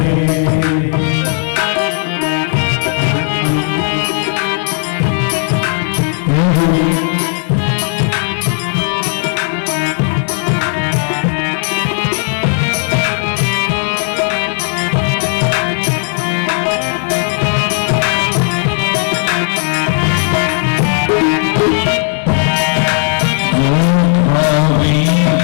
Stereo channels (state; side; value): silent; right; 59 dB below the other